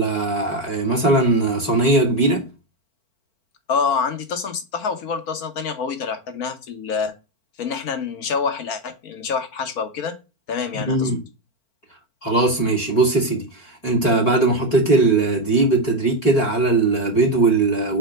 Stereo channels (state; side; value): late; right; 4.5 ms